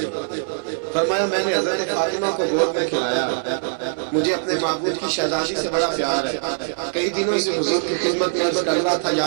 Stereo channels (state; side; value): silent; left; 64 dB below the other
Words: فرمایا میں نے حضرت فاطمہ کو گود میں کھلایا، مجھے اپنے معبود کی شہزادی سے بڑا پیار ہے، کئی دنوں سے حضور کی خدمت میں عرض کر رہا تھا